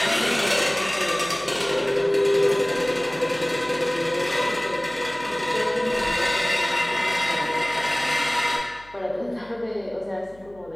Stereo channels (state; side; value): noise; left; hum, 25 dB below the sound